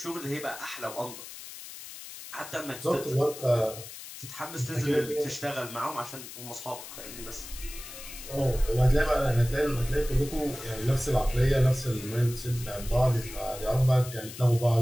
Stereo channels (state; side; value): noise; left; hiss, 13 dB below the sound